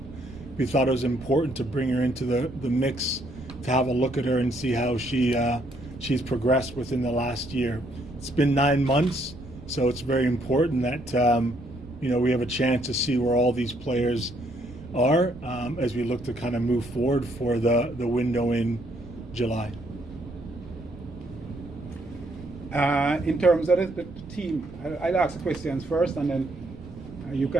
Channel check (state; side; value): noise; right; rumble, 17 dB below the sound